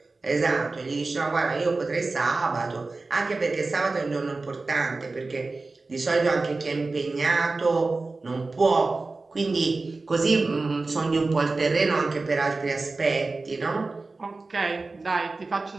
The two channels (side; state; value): left; quieter; 3.6 dB